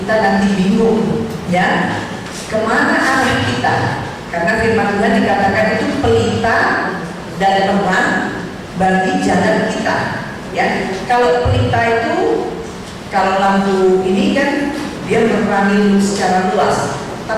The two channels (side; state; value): both; identical; correlation 1.00